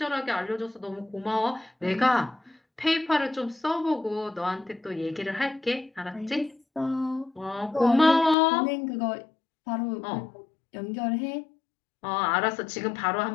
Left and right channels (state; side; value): drops out; right; at 8.3 s